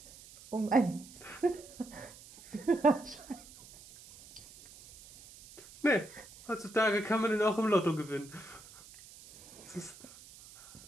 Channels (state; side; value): noise; right; hiss, 20 dB below the sound